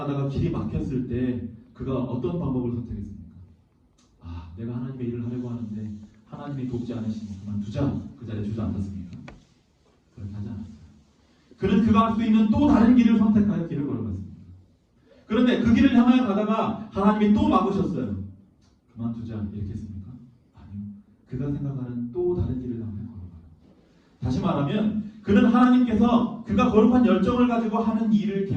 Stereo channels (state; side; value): identical; both; correlation 1.00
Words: 길이 막혔을 때 그가 어떤 방법을 선택했습니까? 내가 하나님의 일을 하려고 하는데 하나님이 돕지 않으시니 그만두자. 그 자리에 주저앉았습니까? 그렇게 하지 않았어요. 그는 그가 할 수 있는 또 다른 길을 선택하여 길을 걸어갔습니다. 그런데 그 길을 향하여 가다가 하나님이 또 막으셨어요. 그만두자 이렇게 했습니까? 아니요. 그가 생각하는 또 다른 길을 향해 걸어가요. 다시 말하면 그는 하나님께서 그가 거룩한 열정을 가지고 하는 일을